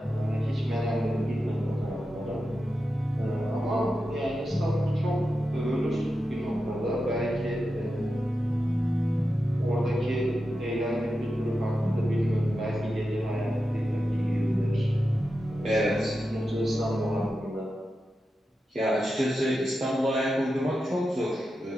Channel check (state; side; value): normal; both; correlation 0.90